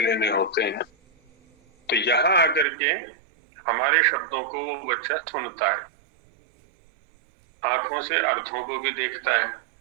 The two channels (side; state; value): left; drops out; at 2.7 s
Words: होते हैं। तो यहाँ आकर के हमारे शब्दों को वो बच्चा सुनता है, आंखों से अर्थों को भी देखता है।